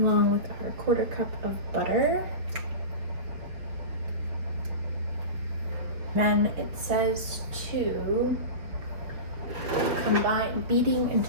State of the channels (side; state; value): left; late; 5.9 ms